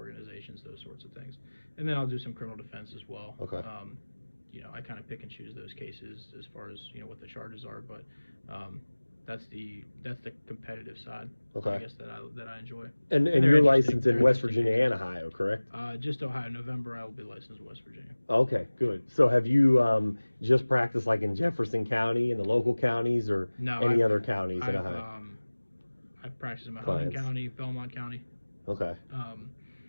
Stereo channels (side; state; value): both; inverted; correlation -1.00